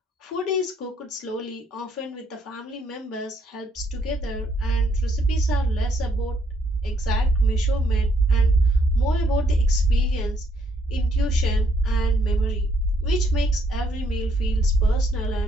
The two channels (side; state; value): both; normal; correlation 0.70